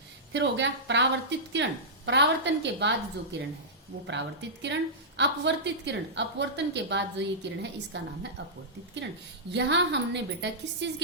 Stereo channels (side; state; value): both; normal; correlation -0.14